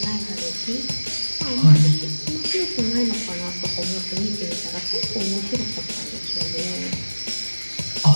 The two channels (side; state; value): both; inverted; correlation -1.00